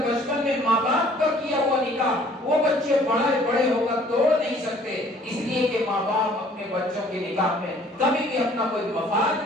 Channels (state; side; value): normal; both; correlation 0.56